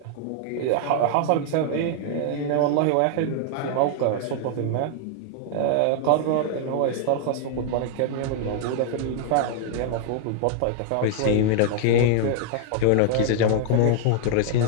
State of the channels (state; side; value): different; both; correlation 0.00